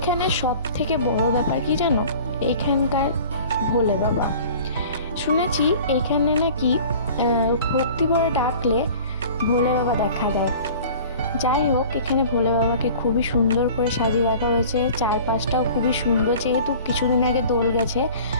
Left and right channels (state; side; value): inverted; both; correlation -0.44